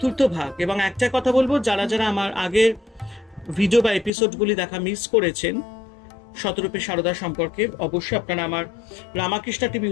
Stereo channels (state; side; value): drops out; right; at 4.1 s